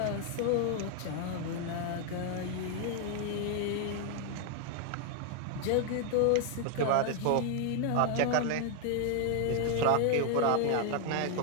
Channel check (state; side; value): different; both; correlation 0.00